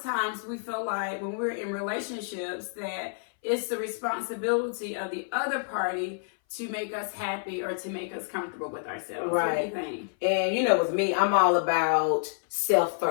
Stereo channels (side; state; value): right; silent; 58 dB below the other